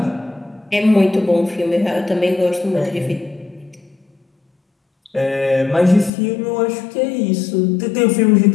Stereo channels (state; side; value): drops out; right; at 6.1 s